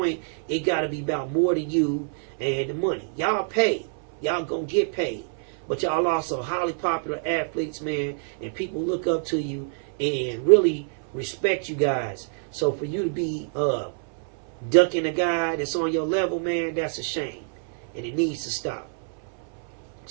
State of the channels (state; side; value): silent; left; 61 dB below the other